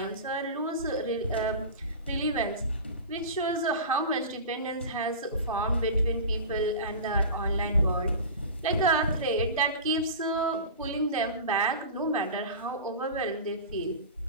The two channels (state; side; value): inverted; both; correlation -0.31